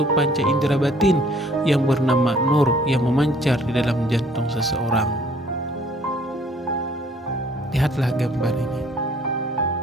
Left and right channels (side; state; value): both; normal; correlation 0.58